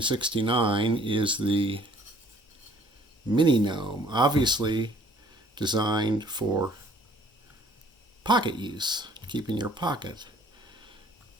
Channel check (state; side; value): normal; both; correlation 0.57